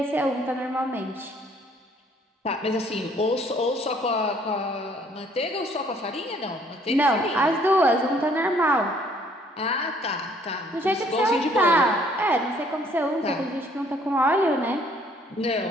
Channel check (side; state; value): both; normal; correlation 0.62